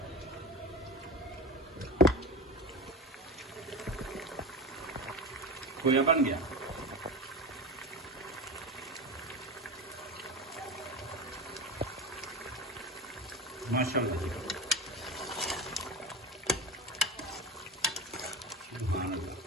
खोया बन गया माशाल्लाह जी। सुभान अल्लाह।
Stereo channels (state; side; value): normal; both; correlation 0.25